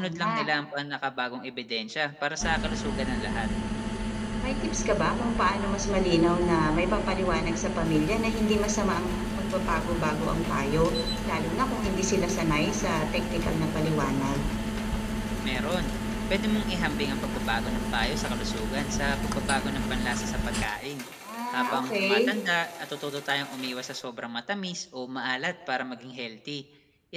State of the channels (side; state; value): both; identical; correlation 1.00